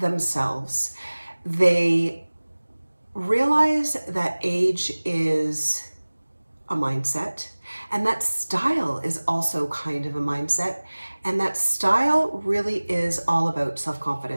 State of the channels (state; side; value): inverted; both; correlation -1.00